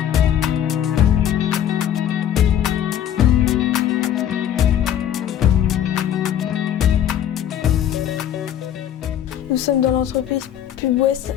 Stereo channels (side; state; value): right; quieter; 10.3 dB